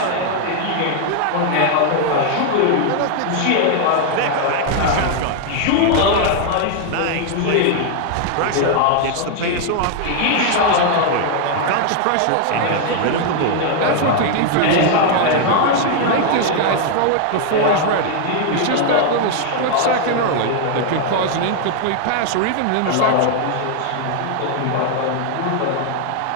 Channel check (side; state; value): both; different; correlation 0.00